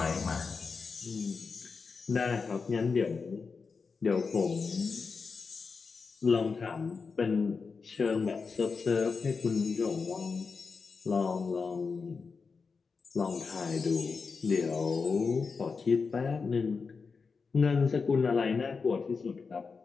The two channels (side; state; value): right; quieter; 4.9 dB